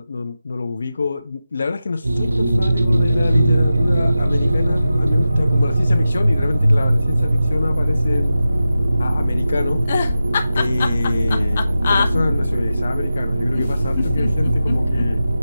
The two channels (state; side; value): inverted; both; correlation -0.93